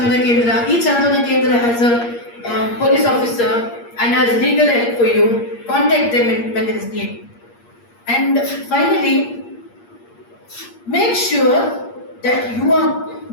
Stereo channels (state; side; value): late; right; 8.5 ms